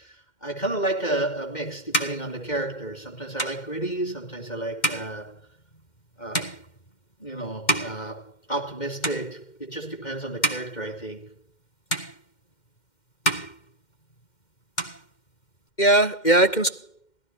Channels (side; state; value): right; late; 2.1 ms